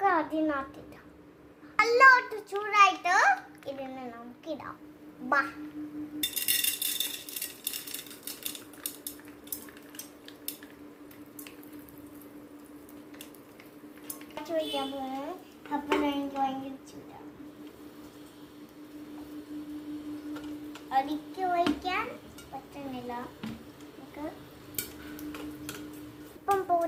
അതിനകത്തിടാം. നല്ലോട്ട് ചൂടായിട്ട് ഇതിനെ നമുക്കിടാം. ബാ ചോദിക്കാൻ പോകുന്നത്. അപ്പോൾ എനിക്ക് ഭയങ്കര ചൂടാണ്. അടിക്ക് വയ്ക്കാൻ പറ്റുന്നില്ല. നമുക്ക് ഇപ്പം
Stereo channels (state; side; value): identical; both; correlation 1.00